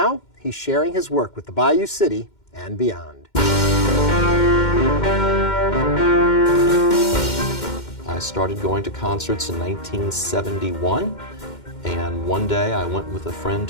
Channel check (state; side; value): late; right; 2.1 ms